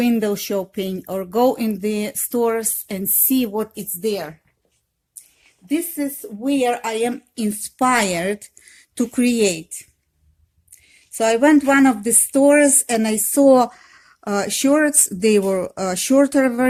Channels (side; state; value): both; identical; correlation 1.00